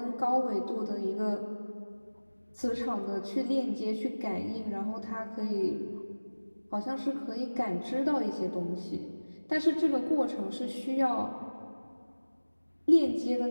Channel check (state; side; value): inverted; both; correlation -1.00